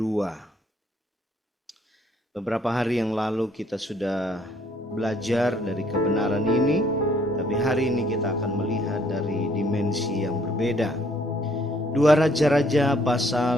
Beberapa hari yang lalu kita sudah belajar dari kebenaran ini, tapi hari ini kita akan melihat dari dimensi yang berbeda. 2 Raja-Raja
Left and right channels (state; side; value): normal; both; correlation 0.65